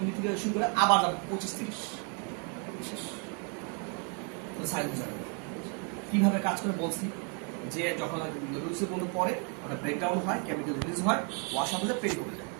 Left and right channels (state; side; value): quieter; left; 38.5 dB